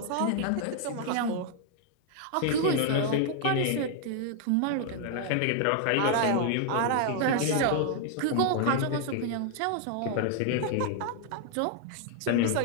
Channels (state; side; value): different; both; correlation 0.00